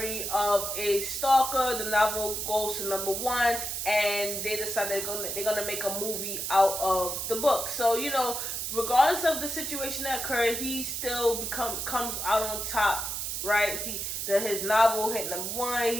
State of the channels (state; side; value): noise; right; hiss, 3 dB below the sound